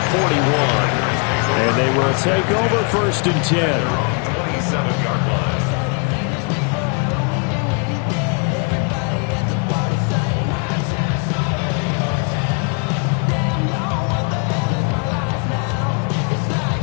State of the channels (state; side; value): quieter; right; 34.9 dB